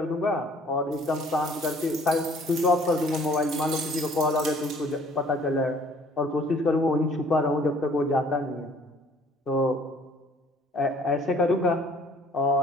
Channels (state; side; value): normal; both; correlation 0.56